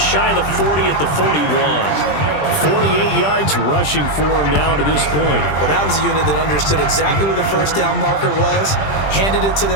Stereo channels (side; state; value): right; late; 20 ms